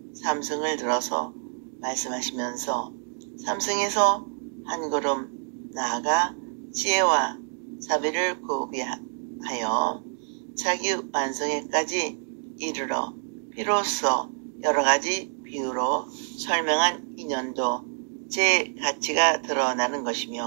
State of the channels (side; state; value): left; silent; 60 dB below the other